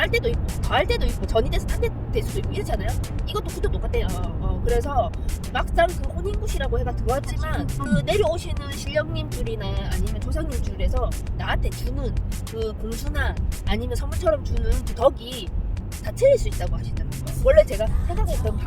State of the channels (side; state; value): both; identical; correlation 1.00